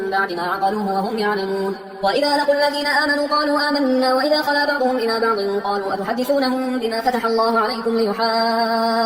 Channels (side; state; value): both; identical; correlation 1.00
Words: بعد ما عقلوه وهم يعلمون وإذا لقوا الذين آمنوا قالوا آمنا وإذا خلا بعضهم إلى بعض قالوا أتحدثونهم بما فتح الله عليكم